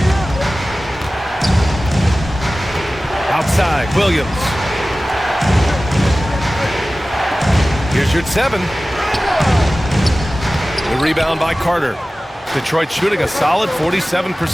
Outside, Williams. Here's your 7. The rebound by Carter. Detroit shooting a solid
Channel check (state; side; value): normal; both; correlation 0.97